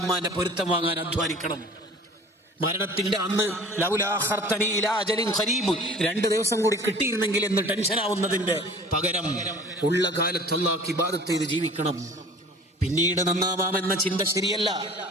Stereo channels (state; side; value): normal; both; correlation 0.44